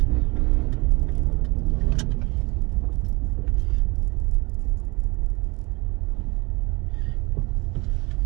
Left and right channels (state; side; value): quieter; left; 25.9 dB